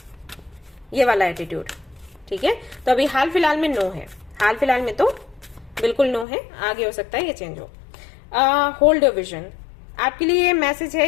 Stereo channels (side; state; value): right; drops out; at 6.2 s